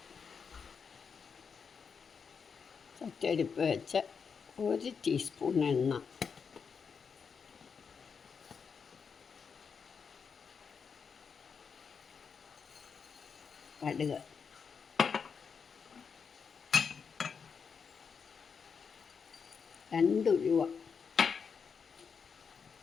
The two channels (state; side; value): quieter; right; 6.1 dB